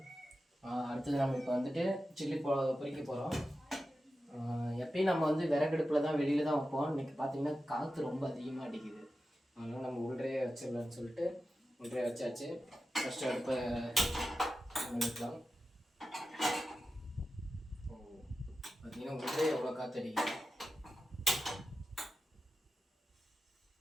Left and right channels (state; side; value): normal; both; correlation 0.92